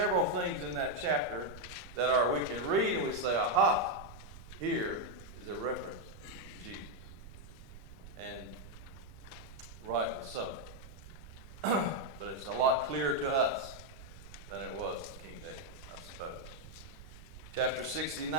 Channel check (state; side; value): noise; right; rumble, 15 dB below the sound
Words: things in that chapter that we can read and we say, aha, here is a reference to Jesus. And rightly so. But it's a lot clearer to us than it was to King David, I suppose. Chapter 69.